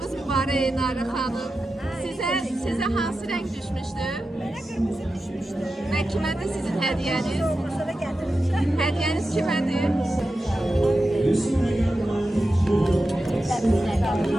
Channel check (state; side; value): normal; both; correlation 0.92